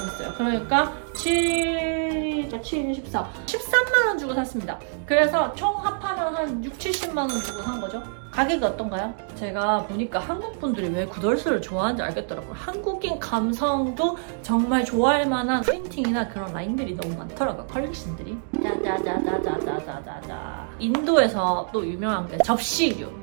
그러니까 7, 14. 13만 원 주고 샀습니다. 그래서 총 합하면 한 6, 70만 원 주고 산 거죠. 가격이 어떤가요? 제가 보니까 한국 분들이 왜 구덜스를 좋아하는지 알겠더라고요. 한국인 감성도 정말 좋아할 만한 프린팅이나 그런 라인들이 너무 많더라고요. 컬렉션들이. 짜자자자자자자자. 인도에서 또 유명한 게 접시류,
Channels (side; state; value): left; silent; digital silence